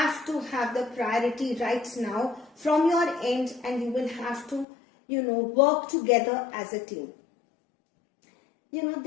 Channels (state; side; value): drops out; right; at 4.7 s